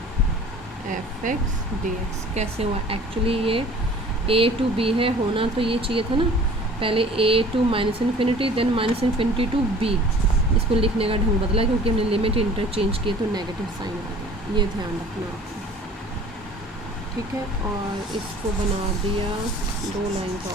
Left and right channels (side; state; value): both; normal; correlation 0.48